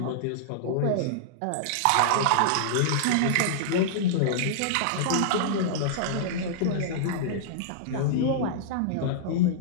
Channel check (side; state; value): both; different; correlation -0.02